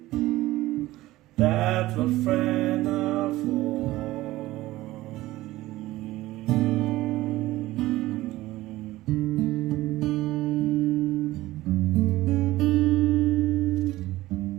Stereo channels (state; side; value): quieter; left; 17.2 dB